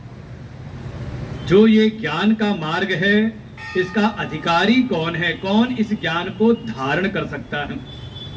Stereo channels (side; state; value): both; identical; correlation 1.00